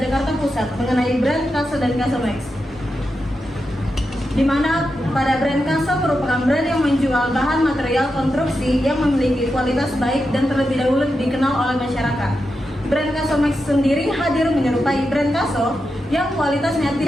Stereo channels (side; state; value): both; normal; correlation 0.88